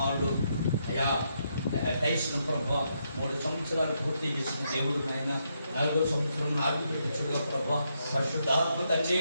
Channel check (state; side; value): inverted; both; correlation -0.79